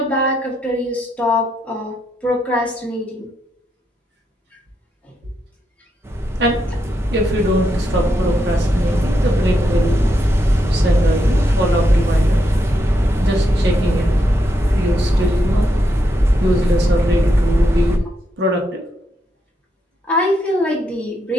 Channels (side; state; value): both; normal; correlation 0.81